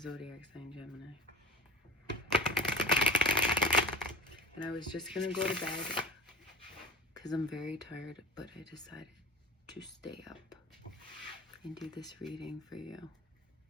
sign Gemini. And I was just going to go to bed because I'm very tired, but I decided to stay up and do this reading for you.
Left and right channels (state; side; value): normal; both; correlation 0.37